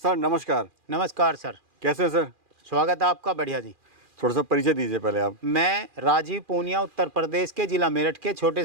नमस्कार। नमस्कार सर। कैसे हैं सर? स्वागत है आपका। बढ़िया जी। थोड़ा सा परिचय दीजिए पहले आप। मैं राजीव पूनिया, उत्तर प्रदेश के जिला मेरठ के छोटे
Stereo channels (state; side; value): late; left; 2.4 ms